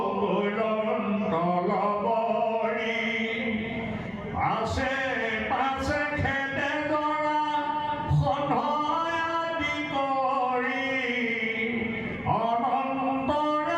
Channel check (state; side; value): identical; both; correlation 1.00